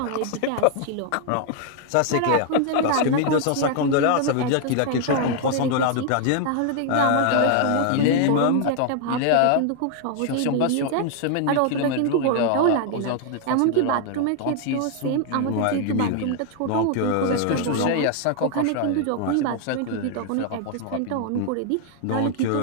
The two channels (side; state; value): both; different; correlation 0.00